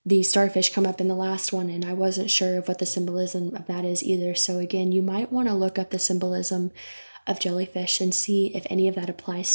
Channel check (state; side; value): inverted; both; correlation -1.00